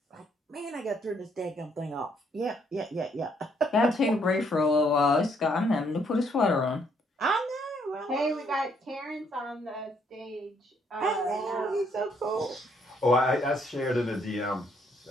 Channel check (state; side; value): normal; both; correlation 0.69